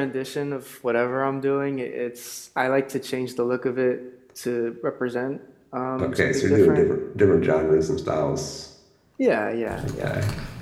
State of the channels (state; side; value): identical; both; correlation 1.00